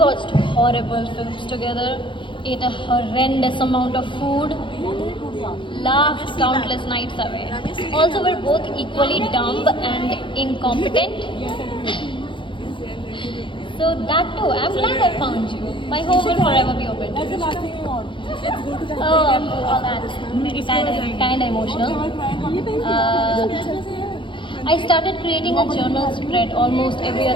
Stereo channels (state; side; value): late; right; 0.24 ms